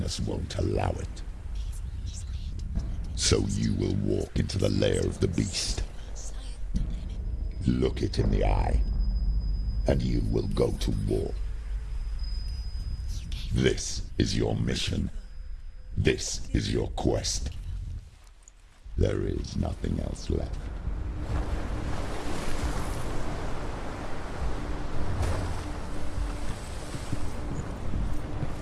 won't allow it. So you will walk into the lair of the beast. Look it in the eye, and you will go to war. This is your mission. This is your quest. There is nothing else left.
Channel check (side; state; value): both; identical; correlation 1.00